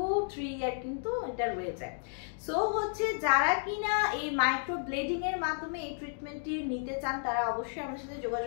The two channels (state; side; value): silent; right; digital silence